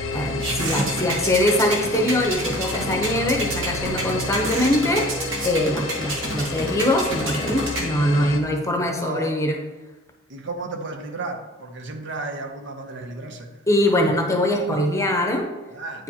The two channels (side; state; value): both; normal; correlation 0.47